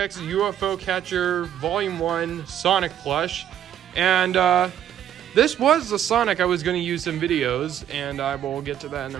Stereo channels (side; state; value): left; quieter; 10.4 dB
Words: UFO Catcher Volume 1 Sonic plush. And this was the Sonic I was going to use in videos, and I will get to that in a